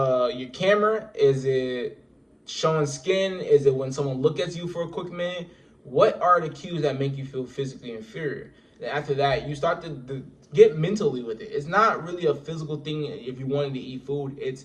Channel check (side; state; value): both; identical; correlation 1.00